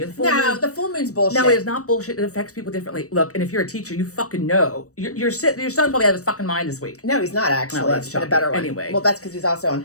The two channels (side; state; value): right; late; 0.66 ms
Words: full moon's bullshit. No, it's not bullshit. It affects people differently. Look, and if you're a teacher, you fucking know. Your son probably had his fucking mind this week. No, he's not actually. Oh, that's been a better one. Anyway, well, that's because he's also on